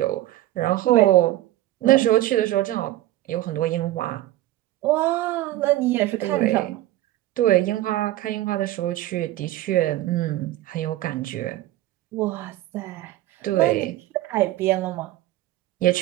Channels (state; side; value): quieter; left; 15.3 dB